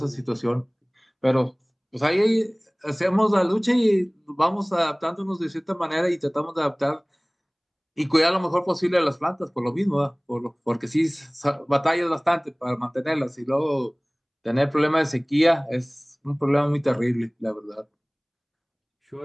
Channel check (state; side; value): identical; both; correlation 1.00